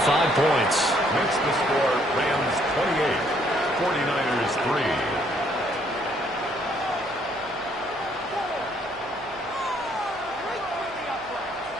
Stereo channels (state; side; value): noise; left; hum, 26 dB below the sound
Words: points. Makes the score Rams 28, 49ers 3.